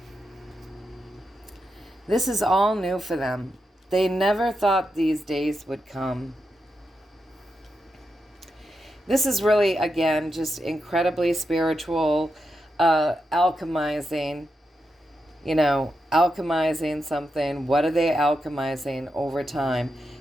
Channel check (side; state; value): both; normal; correlation 0.86